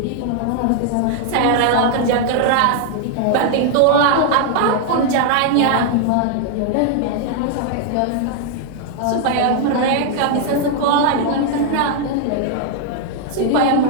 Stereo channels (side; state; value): both; different; correlation 0.00